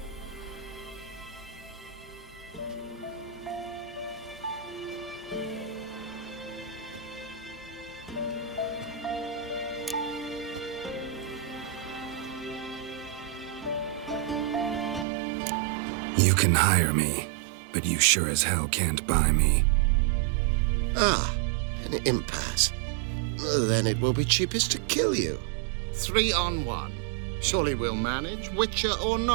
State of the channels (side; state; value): left; drops out; at 15.1 s